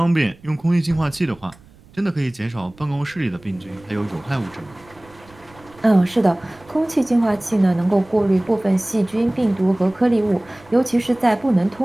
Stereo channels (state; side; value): noise; right; rumble, 26 dB below the sound